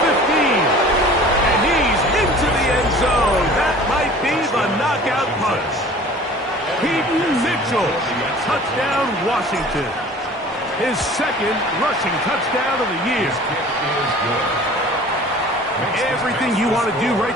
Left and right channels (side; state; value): both; normal; correlation 0.45